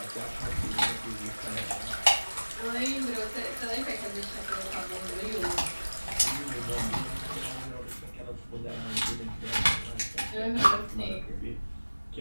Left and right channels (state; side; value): inverted; both; correlation -1.00